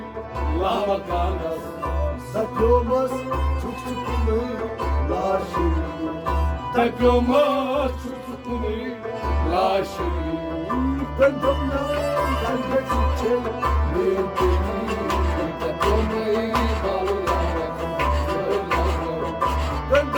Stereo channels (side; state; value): both; identical; correlation 1.00